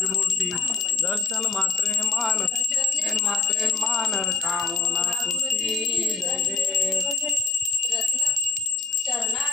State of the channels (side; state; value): right; quieter; 4.4 dB